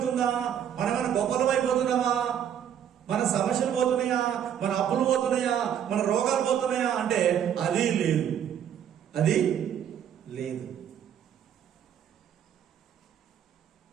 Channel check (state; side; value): quieter; left; 9.3 dB